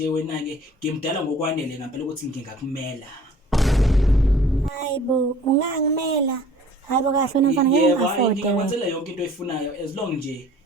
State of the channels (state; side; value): normal; both; correlation 0.50